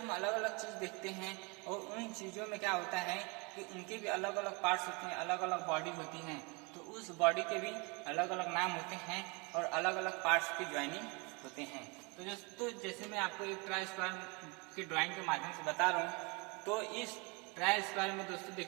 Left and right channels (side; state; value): left; quieter; 29.7 dB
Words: अलग अलग चीज़ देखते हैं और उन चीज़ों में क्या होता है कि उनके भी अलग अलग पार्ट्स होते हैं, अलग अलग बॉडी होती हैं, तो उस बॉडी के भी अलग अलग नाम होते हैं और अलग अलग पार्ट्स की ज्वाइनिंग होते हैं। तो दोस्तों, जैसे मैं आपको एक ट्राई स्क्वायर की ड्राइंग के माध्यम से बता रहा हूँ, तो इस ट्राई स्क्वायर में दोस्तों